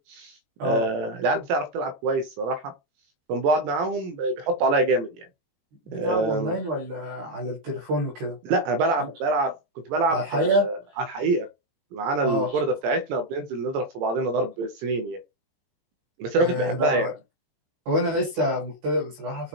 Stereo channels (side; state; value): left; late; 18 ms